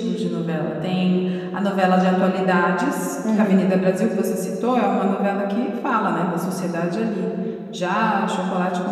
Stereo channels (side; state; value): both; identical; correlation 1.00